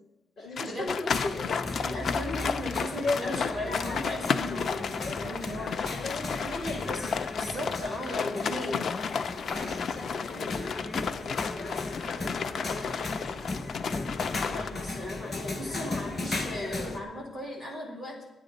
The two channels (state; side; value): quieter; right; 3.7 dB